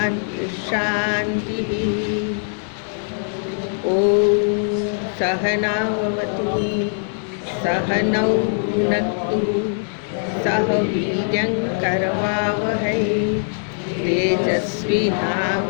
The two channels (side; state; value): right; silent; digital silence